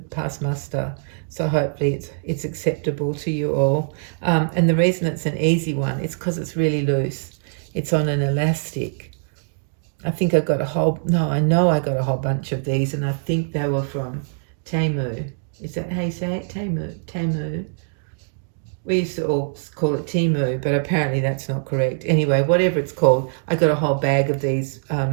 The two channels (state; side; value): silent; left; digital silence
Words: pass muster, so hopefully it's acceptable to you all. And the reason it's an easy one is because it's really loose. It's on an elastic. I think I got I know I got a whole bunch of these, and I think they were from Temu. Is that how you say it? Temu. We used to all call it Temu, but apparently that's not correct. Anyway, whatever it's called, I got a whole bag of these